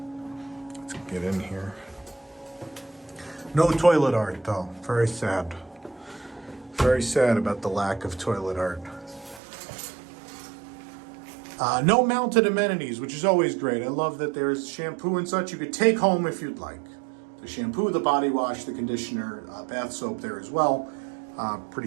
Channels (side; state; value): left; drops out; at 9.4 s